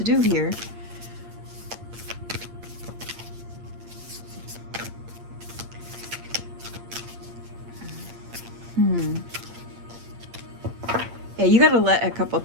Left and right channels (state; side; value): late; left; 8.7 ms